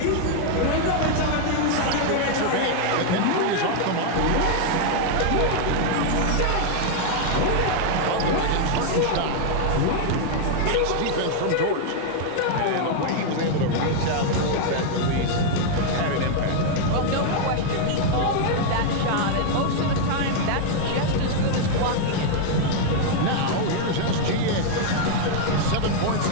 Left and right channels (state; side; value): different; both; correlation 0.00